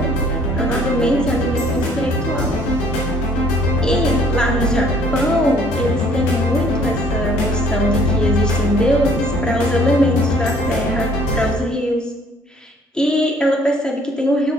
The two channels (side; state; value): both; normal; correlation 0.59